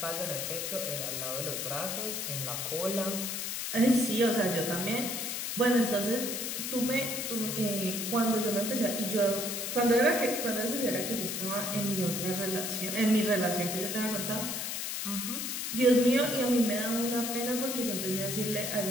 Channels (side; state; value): left; noise; hiss, 3 dB below the sound